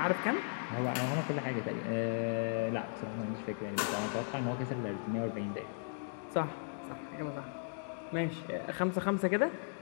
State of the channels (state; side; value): silent; right; digital silence